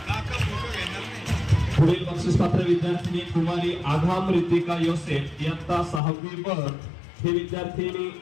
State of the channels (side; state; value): right; drops out; at 6.0 s